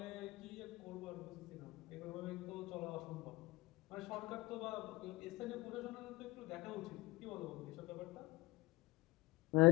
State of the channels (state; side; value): quieter; right; 20.7 dB